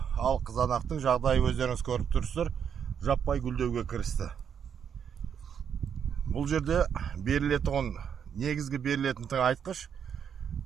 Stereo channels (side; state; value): left; quieter; 7.8 dB